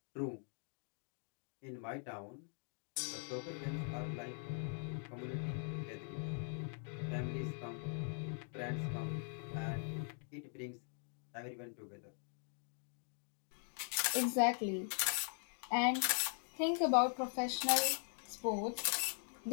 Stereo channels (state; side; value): silent; right; 50 dB below the other